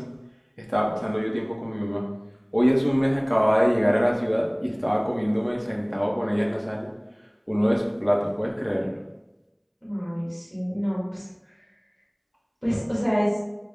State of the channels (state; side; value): identical; both; correlation 1.00